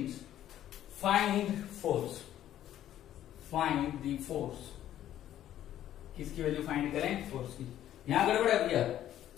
find the force। किसकी वैल्यू फाइंड करें, फोर्स की। यहां गड़बड़ है भैया,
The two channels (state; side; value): quieter; right; 11.9 dB